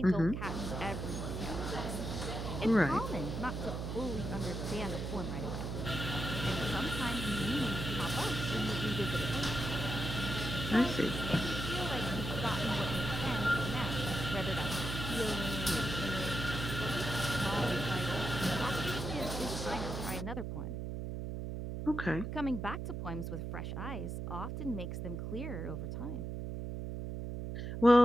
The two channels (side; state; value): right; noise; hum, 4 dB below the sound